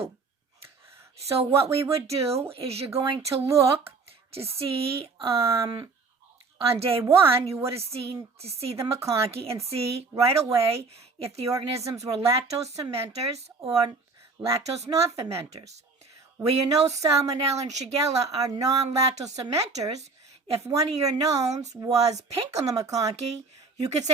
So what we would do is you're going to look to see on day one, you would have seen to see the McConkey and see right away if the organisms were lactose fermenters or lactose non-fermenters. Where you know Salmonella and Shigella are non-lactose fermenters, if one of your knowns was pink on the McConkey, you could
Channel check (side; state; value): left; quieter; 4.2 dB